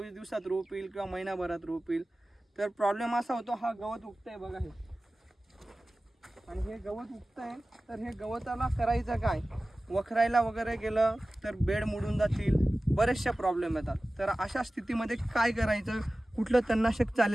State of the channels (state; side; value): normal; both; correlation 0.97